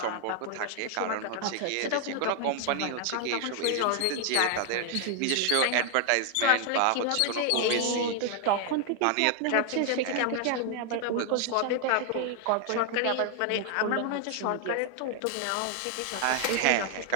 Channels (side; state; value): both; different; correlation 0.00